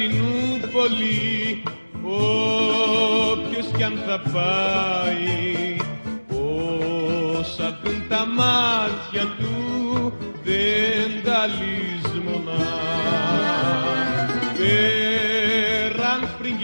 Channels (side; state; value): both; inverted; correlation -1.00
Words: όποιος κι αν θα πάει, όσα δουν τα μάτια του δεν τα λησμονά. Πέραν